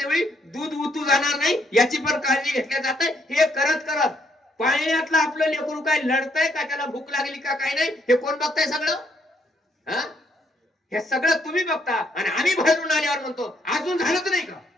वेळी दूध उतू जाणार नाही याची पण काळजी घेतल्या जाते. हे करत करत पाण्यातलं आपलं लेकरू काय लढतंय का, त्याला भूक लागली का काय नाही, हे कोण बघताय सगळं? हे सगळं तुम्ही बघता, आणि आम्ही बाहेरून आल्यावर म्हणतो अजून झालंच नाही का?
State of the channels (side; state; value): both; normal; correlation 0.71